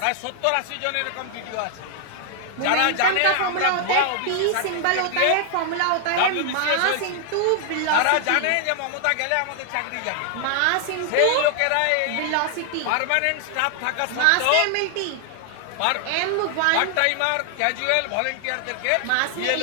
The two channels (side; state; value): both; different; correlation 0.00